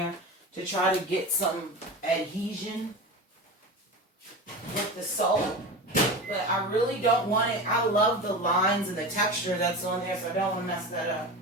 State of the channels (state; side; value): normal; both; correlation 0.27